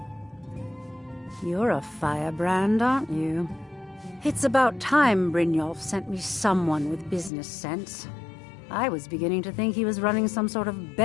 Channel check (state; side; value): drops out; right; at 7.3 s